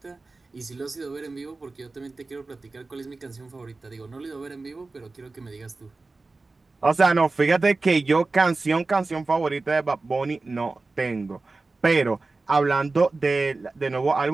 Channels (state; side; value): quieter; left; 3.6 dB